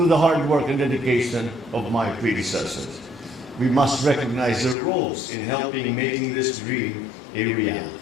the hard work and dedication of my predecessors. We must recognize their roles in helping making this dream a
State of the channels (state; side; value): drops out; right; at 4.8 s